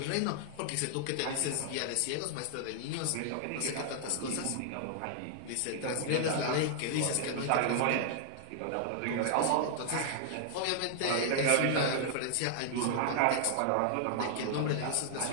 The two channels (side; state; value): both; different; correlation 0.00